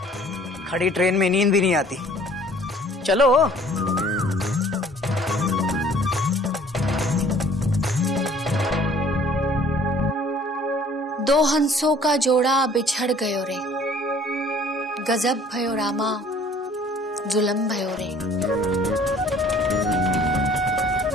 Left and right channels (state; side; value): normal; both; correlation 0.54